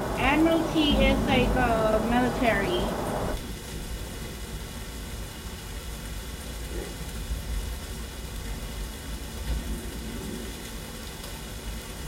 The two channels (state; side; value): identical; both; correlation 1.00